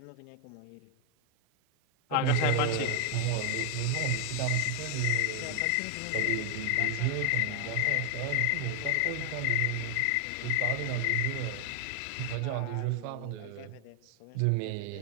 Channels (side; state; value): both; different; correlation 0.00